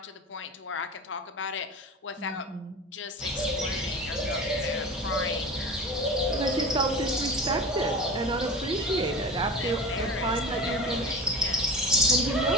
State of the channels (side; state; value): both; normal; correlation 0.33